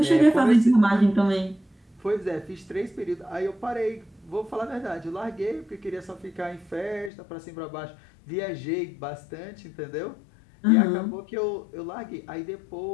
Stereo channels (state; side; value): drops out; right; at 7.1 s